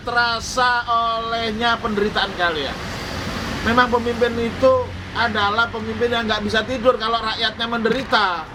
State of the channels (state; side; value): identical; both; correlation 1.00